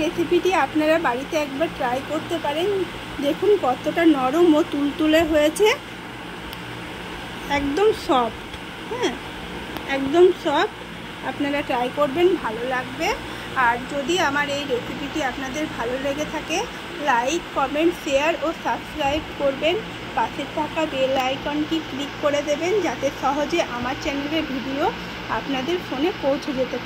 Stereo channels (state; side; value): identical; both; correlation 1.00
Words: রেসিপিটি আপনারা বাড়িতে একবার ট্রাই করতে পারেন। দেখুন কতটা নরম ও তুলতুলে হয়েছে, একদম সফট। হ্যাঁ, একদম সফট। আপনারা ট্রাই করবেন, ভালো লাগবে। আর যদি আমার এই রেসিপিটি আপনাদের ভালো লেগে থাকে, লাইক, কমেন্ট, শেয়ার ও সাবস্ক্রাইব করবেন। পাশে থাকা বেল আইকনটি ক্লিক করে দেবেন, যাতে সহজে আমার চ্যানেলের ভিডিও আপনাদের ফোনে পৌঁছে যেতে